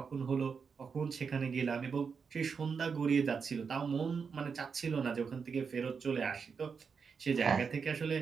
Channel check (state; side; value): quieter; left; 5.8 dB